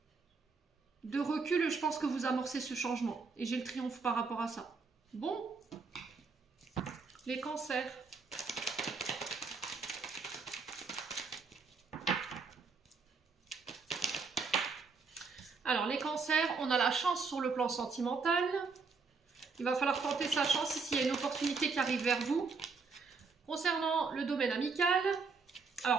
de recul, je pense que vous amorcez ce changement. Et j'ai le triomphe par rapport à ça. Bon. Les cancers. Alors, les cancers, on a la chance sur le plan sentimental. Il va falloir tenter sa chance s'il y a une opportunité qui arrive vers vous. Concernant le domaine amical,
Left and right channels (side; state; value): left; quieter; 4.6 dB